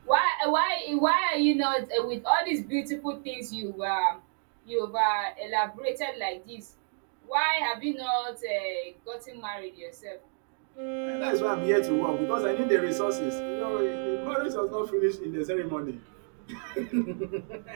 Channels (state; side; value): silent; left; digital silence